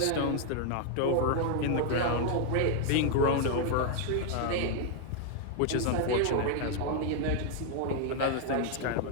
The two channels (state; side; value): different; both; correlation 0.00